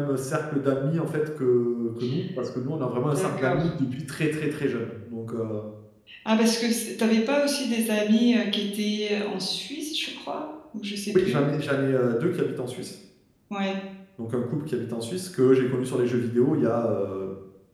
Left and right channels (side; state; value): both; identical; correlation 1.00